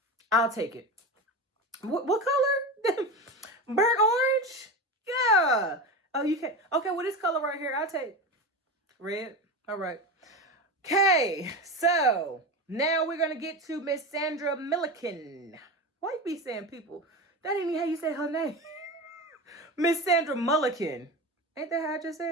I'll take it. What color? Burnt orange? Yeah. Oh, you can. Okay, well, this color right here, I'll take red. All right. Okay, so now we're going to get to Miss Sandra Milliken. Why you be saying people? That ain't even how you say her name. Miss Sandra Mulliken. Ain't that how I just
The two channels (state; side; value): normal; both; correlation 0.24